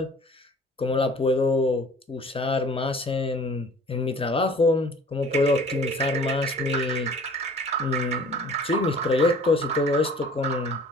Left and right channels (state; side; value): normal; both; correlation 0.49